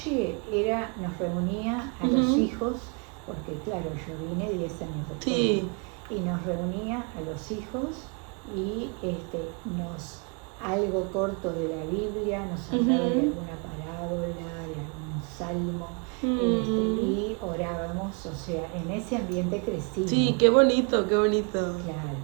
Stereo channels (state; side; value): quieter; left; 36.1 dB